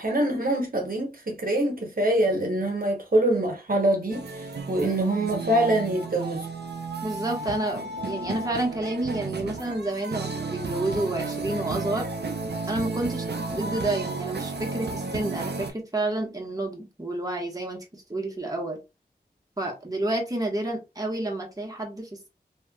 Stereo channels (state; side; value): normal; both; correlation 0.61